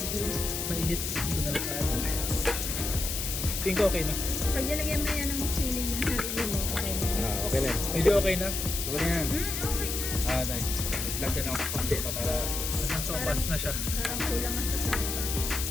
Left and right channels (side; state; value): left; noise; hiss, 3 dB below the sound